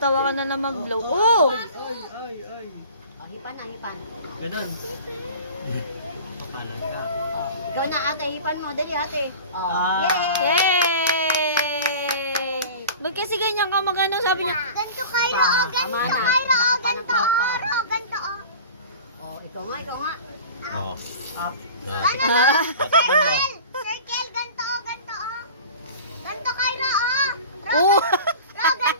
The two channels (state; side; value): inverted; both; correlation -0.39